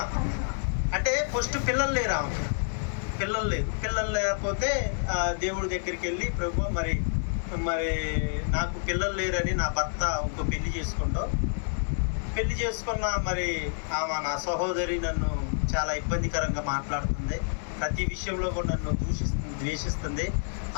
అంటే ఫస్ట్ పిల్లలు లేరు ఆమెకి, పిల్లలు లేకపోతే దేవుడి దగ్గరికి వెళ్ళి ప్రభు మరి నాకు పిల్లలు లేరని నా భర్త ఇంకో పెళ్లి చేసుకున్న మరి ఆమె నా సహోదరి నన్ను చాలా ఇబ్బందికరంగా మాట్లాడుతుంది, ప్రతి విషయంలో కూడా నన్ను ద్వేషిస్తుంది,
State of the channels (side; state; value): right; silent; digital silence